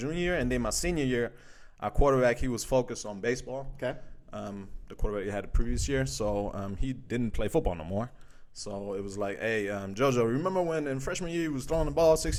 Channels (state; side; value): identical; both; correlation 1.00